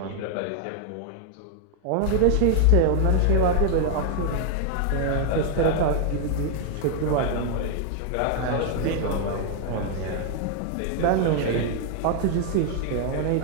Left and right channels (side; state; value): both; different; correlation 0.00